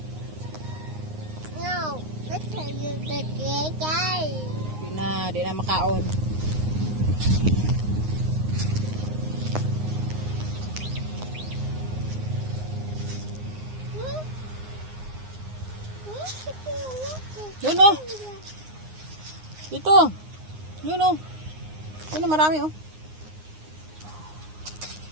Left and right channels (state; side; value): late; left; 9.6 ms